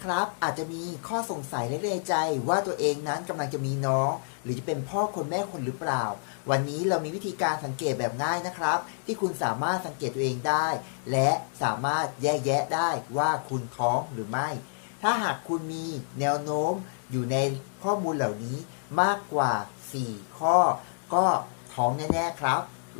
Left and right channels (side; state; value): right; silent; 59 dB below the other